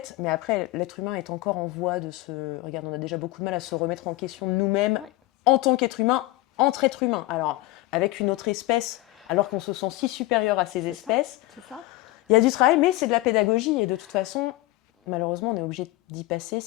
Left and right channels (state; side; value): quieter; right; 18.9 dB